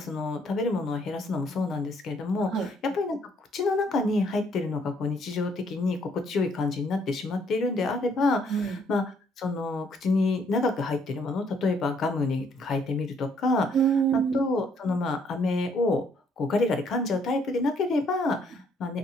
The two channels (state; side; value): normal; both; correlation 0.67